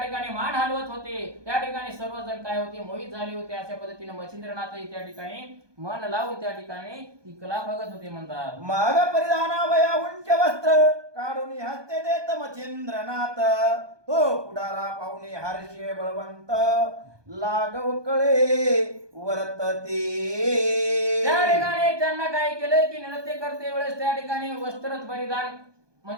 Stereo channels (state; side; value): late; left; 1.2 ms